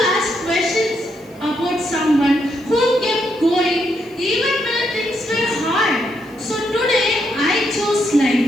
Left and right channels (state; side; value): noise; right; hiss, 29 dB below the sound